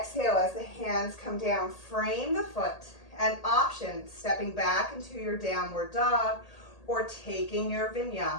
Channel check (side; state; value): right; late; 1.8 ms